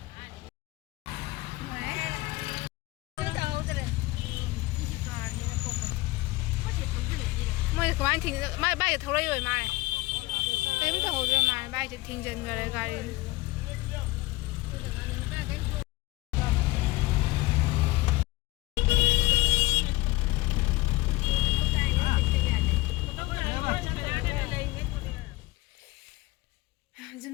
ꯃꯣꯏꯅ ꯀꯃꯥꯏꯅ ꯃꯥꯏ ꯕꯥꯏꯛꯇ ꯊꯧꯔꯛꯏ ꯃꯥꯜꯂꯦ ꯀꯔꯤꯝ ꯇꯧꯍꯧꯗ꯭ꯔ ꯃꯥꯜꯂꯦ ꯕꯥꯏꯛꯁꯦ ꯊꯤꯡꯖꯤꯟꯈꯔꯦ ꯒꯥꯔꯤ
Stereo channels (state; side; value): quieter; right; 20.7 dB